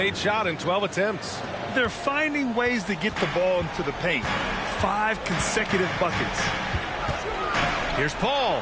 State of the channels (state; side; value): identical; both; correlation 1.00